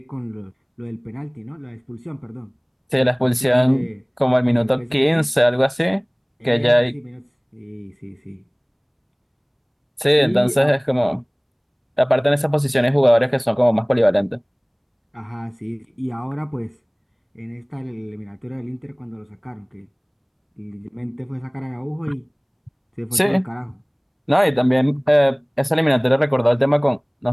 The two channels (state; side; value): identical; both; correlation 1.00